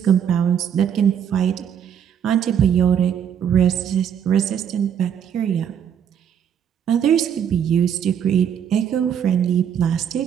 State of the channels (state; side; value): quieter; left; 8.6 dB